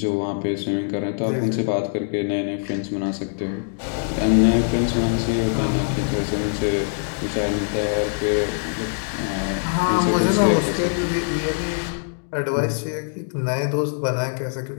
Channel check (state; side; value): silent; right; digital silence